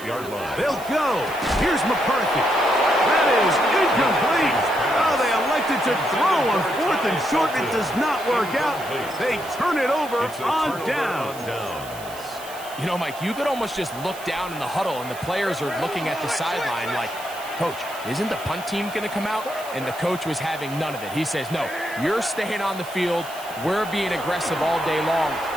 line. They'll go. Here's McCarthy. That is incomplete. Oh, they elected to throw on 4th and short. It does not work out. They turn it over on down. You know, Mike, you could almost just look down in the huddle, and the players are looking at the sideline like, Coach, isn't the punt team going to come out? And the coach was having none of it. He says, no, you're staying on the field. We're being aggressive all day long,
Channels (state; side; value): noise; right; hiss, 17 dB below the sound